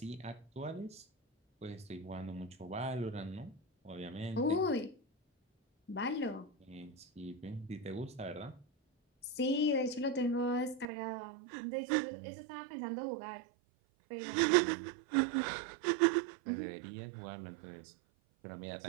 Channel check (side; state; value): left; drops out; at 10.9 s